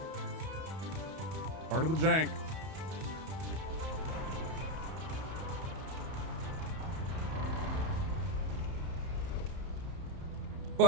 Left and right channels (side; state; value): left; late; 31 ms